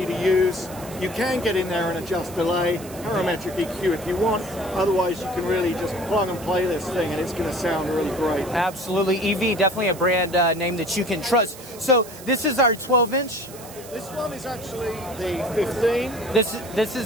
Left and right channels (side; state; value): right; noise; hiss, 17 dB below the sound